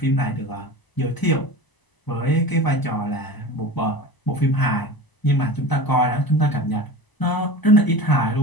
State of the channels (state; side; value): late; right; 1.0 ms